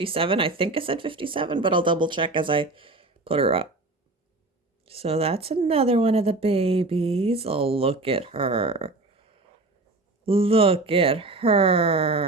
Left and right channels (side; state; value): left; quieter; 3.1 dB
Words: I think I said 57, but I'll double check as I put her up. So that's another one of the babies. Oh, look at her. Look at